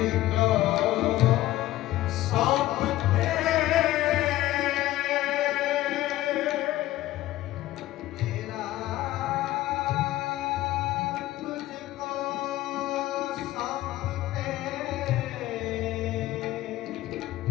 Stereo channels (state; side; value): quieter; right; 15.5 dB